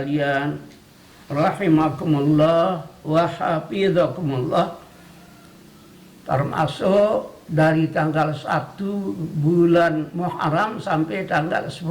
rahimakumullah wa hafizakumullah, termasuk dari tanggal 1 bulan Muharram sampai tanggal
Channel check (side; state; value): both; identical; correlation 1.00